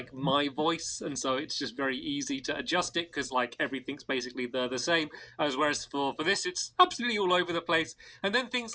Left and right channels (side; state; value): both; identical; correlation 1.00